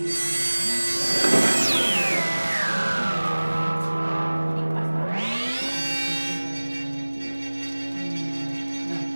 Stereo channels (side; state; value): both; inverted; correlation -1.00